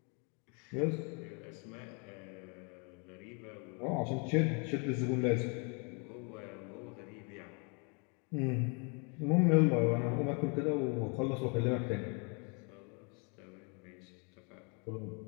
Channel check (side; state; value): right; quieter; 35.2 dB